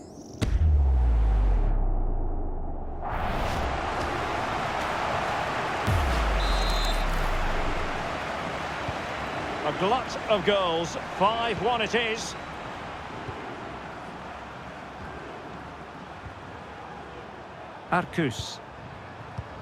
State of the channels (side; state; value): both; identical; correlation 1.00